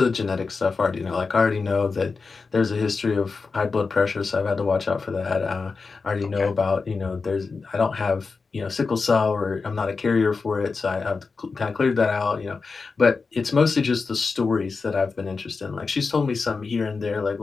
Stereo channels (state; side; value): quieter; right; 4.5 dB